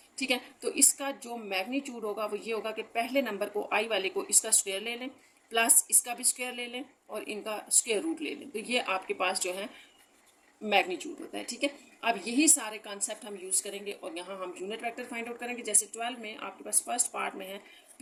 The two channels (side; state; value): both; identical; correlation 1.00